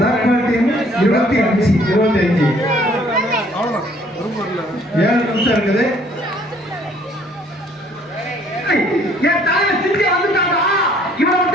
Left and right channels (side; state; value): both; normal; correlation 0.60